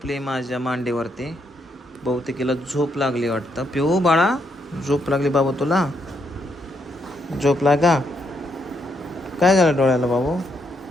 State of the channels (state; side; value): normal; both; correlation 0.76